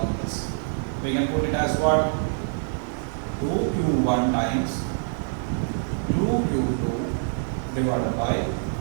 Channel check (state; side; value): silent; left; digital silence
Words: this. We can put it as what? 2Q1 times 2Q2 divided by